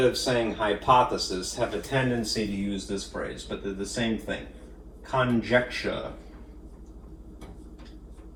of saying hypothesis, have a tendency to use this phrase, but they're the same thing. Conjecture.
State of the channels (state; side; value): identical; both; correlation 1.00